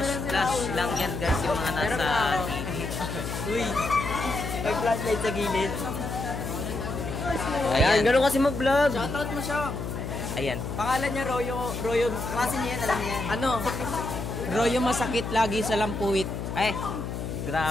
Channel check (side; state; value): left; noise; hum, 5 dB below the sound